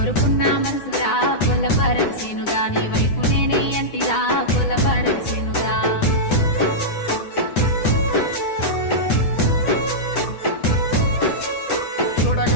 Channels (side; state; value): right; late; 9.9 ms